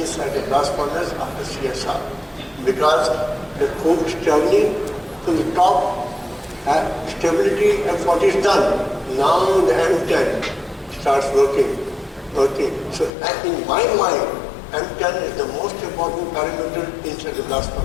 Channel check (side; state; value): right; drops out; at 13.1 s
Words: the blast furnace after CSR. Because the coke is traveling to the top, stability F40 is done. Now the M10 starts working. So in my mind, M10 is the most important parameter inside the blast